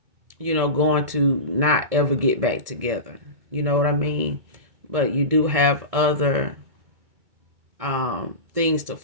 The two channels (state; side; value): late; left; 2.2 ms